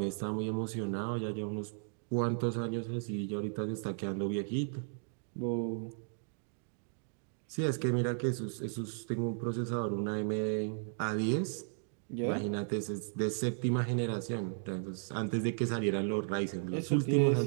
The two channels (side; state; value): left; silent; digital silence